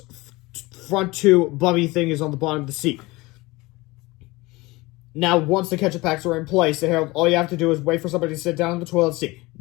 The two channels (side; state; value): right; quieter; 21.9 dB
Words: front 2 bubby thingies on the bottom of the seat. Now, once the ketchup packs are in place, Harold, all you have to do is wait for somebody to sit down in the toilet seat.